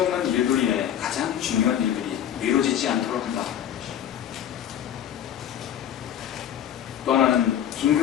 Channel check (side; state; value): right; quieter; 10.2 dB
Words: 일들 인해 가장 중요한 일들이 미뤄지지 않도록 한다. 또 하나는